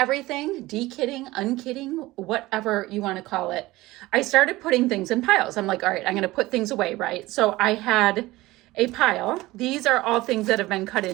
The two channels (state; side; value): quieter; left; 18.8 dB